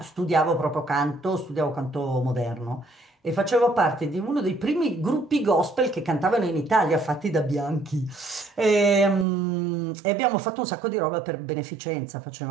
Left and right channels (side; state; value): left; drops out; at 9.2 s